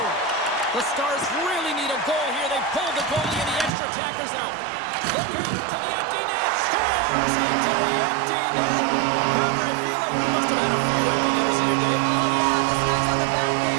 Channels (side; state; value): left; drops out; at 3.7 s